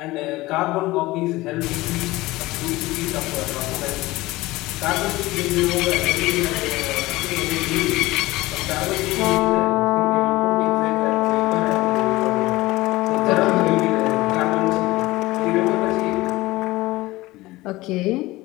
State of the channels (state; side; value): quieter; right; 19.3 dB